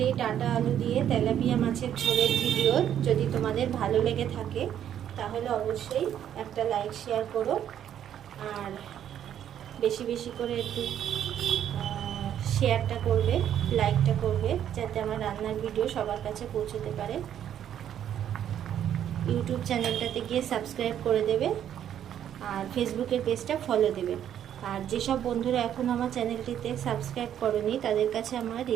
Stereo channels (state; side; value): quieter; left; 10.1 dB